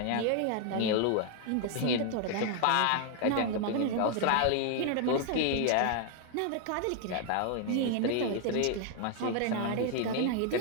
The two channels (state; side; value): different; both; correlation 0.00